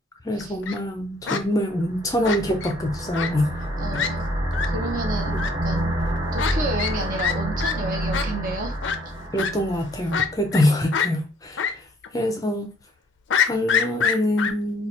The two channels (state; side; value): normal; both; correlation 0.62